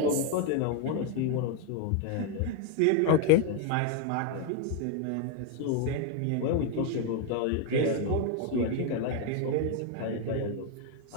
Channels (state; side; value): different; both; correlation 0.01